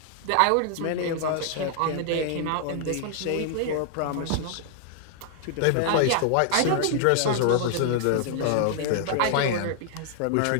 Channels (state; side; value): different; both; correlation 0.00